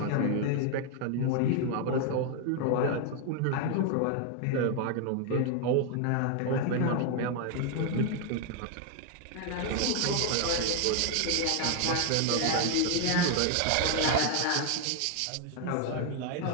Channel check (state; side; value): different; both; correlation 0.00